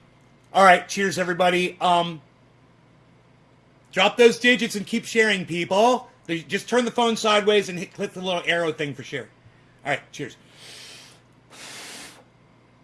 All right, cheers, everybody. Drop those digits and keep sharing, people. Just turn the phone sideways and click the little arrow thing for share. All right, cheers.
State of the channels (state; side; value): identical; both; correlation 1.00